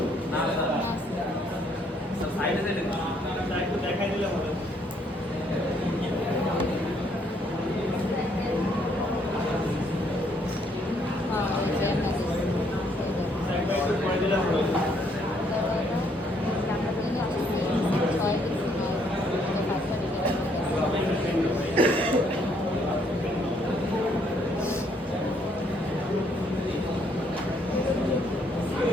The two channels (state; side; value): normal; both; correlation 0.69